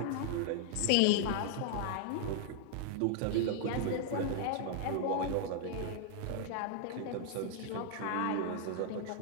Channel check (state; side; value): different; both; correlation 0.00